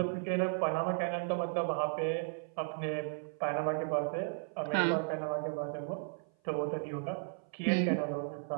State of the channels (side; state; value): left; silent; 54 dB below the other